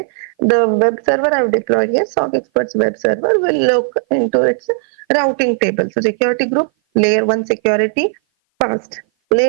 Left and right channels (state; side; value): silent; left; 57 dB below the other